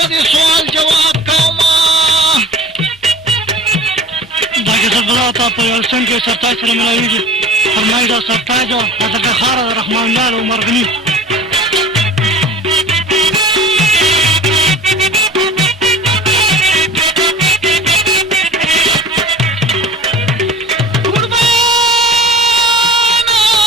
دې سوال جواب کومه دا کیسه بلا تا په یو سنګ کې سرتاج سره ملاویږي فرمایي دا سرتاج او حضرت خار رحمان لال او مرغني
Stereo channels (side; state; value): both; normal; correlation 0.41